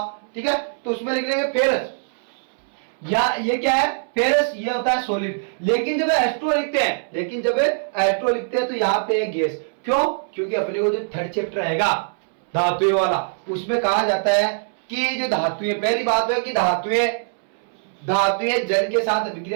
ठीक है, तो उसमें लिख लेंगे फेरस, या ये क्या है फेरस, ये होता है सॉलिड। लेकिन जब एस्ट्रो लिखते हैं तो यहाँ पे गैस, क्यों? क्योंकि अपने को जो थर्ड चैप्टर रहेगा धातुएं वाला, उसमें कहा जाता है कि जो धातुएं, पहली बात है कि धातुएं जल के साथ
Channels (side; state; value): left; silent; 64 dB below the other